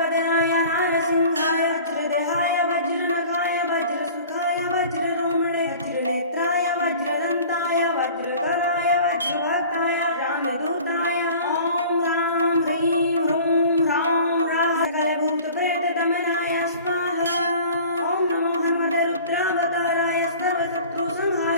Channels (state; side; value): inverted; both; correlation -0.45